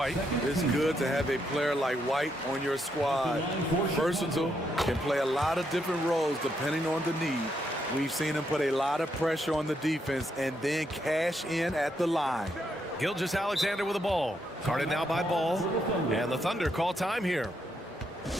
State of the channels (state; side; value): normal; both; correlation 0.78